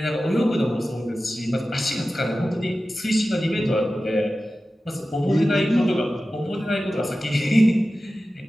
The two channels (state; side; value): normal; both; correlation 0.95